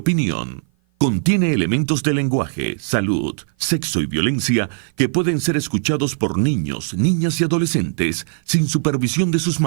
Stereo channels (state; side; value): silent; left; 55 dB below the other